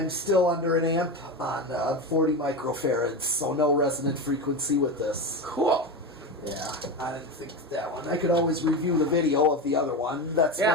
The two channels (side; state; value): both; normal; correlation 0.20